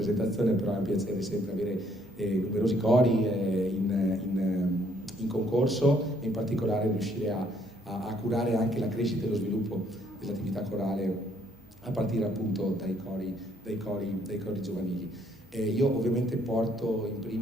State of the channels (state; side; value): normal; both; correlation 0.67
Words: però è un piacere sempre avere numerosi cori in concorso e in particolare riuscire a curare anche la crescita e lo sviluppo dell'attività corale a partire appunto dai cori giovanili. Io ovviamente porto in